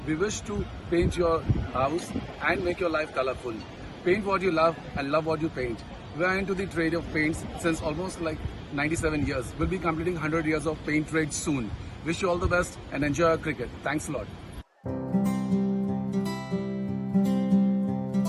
We wish to paint your house and make your life colorful. Paint what you love and love what you paint. We are into the trade of paints since almost like 97 years. We'll be completing 100 years of paint trade soon. Wish you all the best and enjoy our cricket. Thanks a lot.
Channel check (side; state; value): both; identical; correlation 1.00